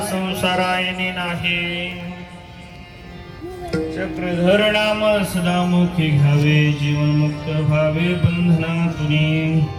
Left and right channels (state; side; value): identical; both; correlation 1.00